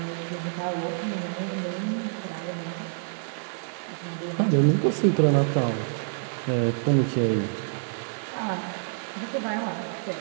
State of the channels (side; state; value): left; silent; digital silence